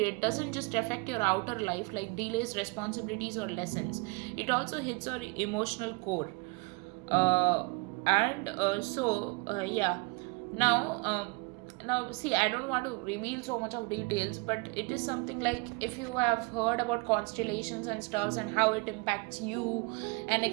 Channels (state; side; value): quieter; left; 28.0 dB